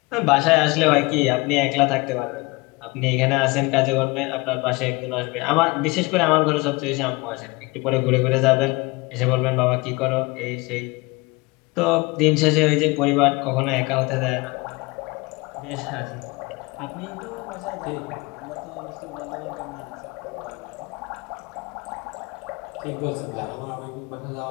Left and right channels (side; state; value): right; quieter; 24.9 dB